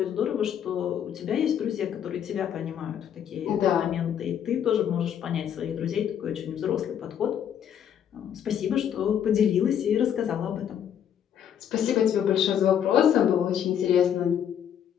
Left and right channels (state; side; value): quieter; right; 9.1 dB